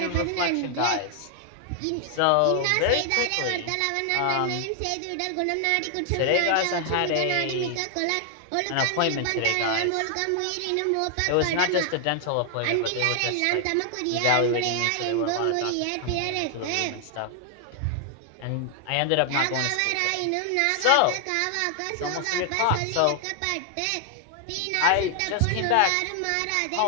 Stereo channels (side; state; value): both; different; correlation 0.00